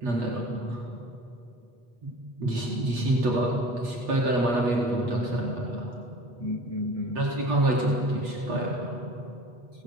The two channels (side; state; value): left; late; 8.3 ms